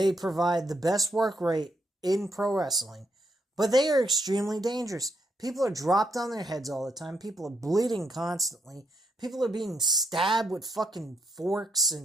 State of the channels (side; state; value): both; normal; correlation 0.77